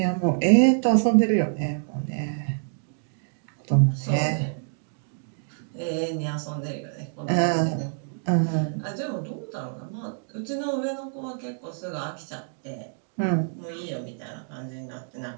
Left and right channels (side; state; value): left; silent; digital silence